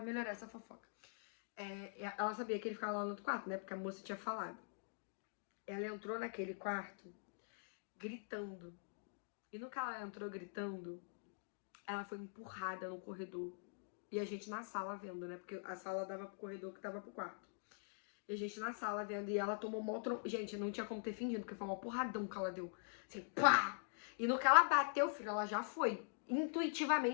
melhorar essa fofoca. Ela sabia que ele ficava lá no outro quarto, né? Porque a moça tinha falado. Ela entrou naquele quarto gritando. E no que ela entrou gritando, ela foi empurrada no corredor. E a gente na sala vendo, né? Porque a sala dava pro corredor que dava pro quarto. E a gente na sala vendo. E ela tomou uma outra... Gente, não tinha como ter fingido, porque foi uma porradão que ela deu. Assim, pá! E no que ela bateu, filho, ela já foi.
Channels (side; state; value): right; silent; digital silence